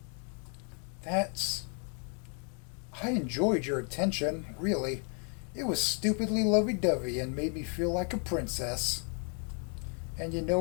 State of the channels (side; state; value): right; quieter; 39.6 dB